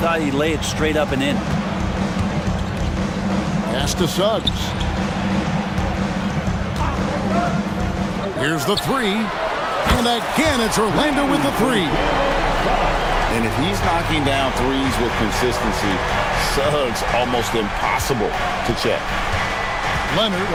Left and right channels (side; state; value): both; identical; correlation 1.00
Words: he'd lay it straight up and in. Pass to Suggs. Here's the three. And again, it's Orlando with the three. And if he's knocking down threes with consistency, Suggs almost impossible to check. Leonard